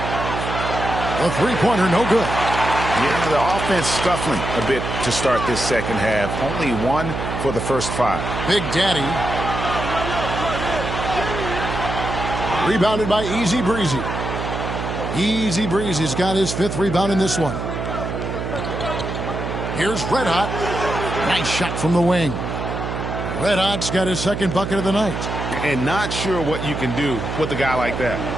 A three-pointer, no good. Yeah, the offense scuffling a bit to start this second half. Only 1 for the first 5. Big Daddy. Rebounded by Easy Breezy. Easy Breezy's got his 5th rebound in this one. Here's Red Hot. Nice shot from the wing. Red Hot's got his second bucket of the night. And not sure what you can do with a guy like that.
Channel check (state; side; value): noise; right; hum, 4 dB below the sound